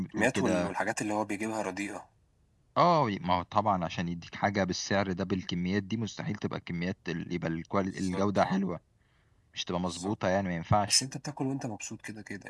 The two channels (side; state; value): both; identical; correlation 1.00